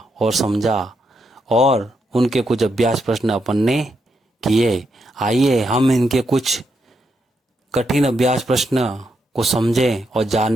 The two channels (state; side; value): normal; both; correlation 0.81